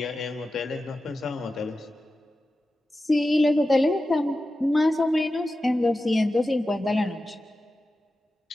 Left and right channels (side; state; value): both; normal; correlation 0.93